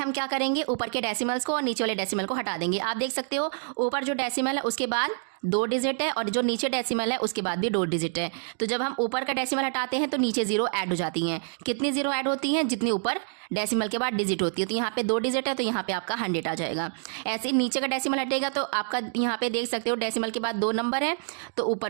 क्या करेंगे, ऊपर के डेसिमल्स को और नीचे वाले डेसिमल को हटा देंगे। आप देख सकते हो ऊपर जो डेसिमल है उसके बाद 2 डिजिट है और जो नीचे डेसिमल है उसके बाद भी 2 डिजिट है। तो जब हम ऊपर का डेसिमल हटाते हैं तो नीचे 0 ऐड हो जाती हैं। कितनी 0 ऐड होती हैं, जितनी ऊपर डेसिमल के बाद डिजिट होती है। तो यहाँ पे 2 डिजिट है तो यहाँ पे आपका 100 आ जाएगा। ऐसे नीचे का डेसिमल हटेगा तो आपका यहाँ पे देख सकते हो डेसिमल के बाद 2 नंबर है तो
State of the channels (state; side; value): silent; left; 60 dB below the other